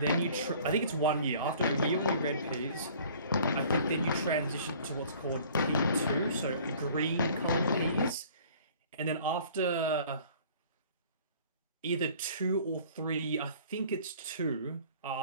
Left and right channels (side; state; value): both; inverted; correlation -0.51